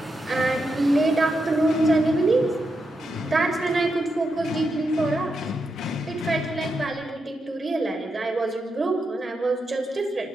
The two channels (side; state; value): both; normal; correlation 0.85